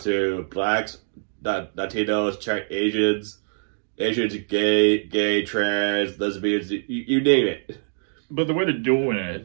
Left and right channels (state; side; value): silent; left; 63 dB below the other